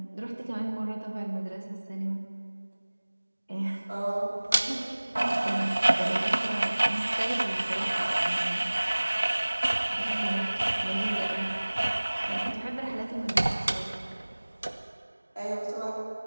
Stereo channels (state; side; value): inverted; both; correlation -1.00